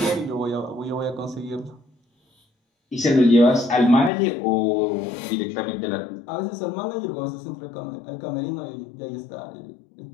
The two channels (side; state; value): right; drops out; at 4.1 s